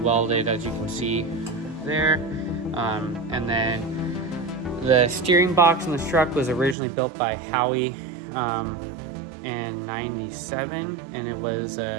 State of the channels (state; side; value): drops out; left; at 6.8 s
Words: welded, as you can see there. And then the steering box in this truck was originally built by Howdy in 97, and it was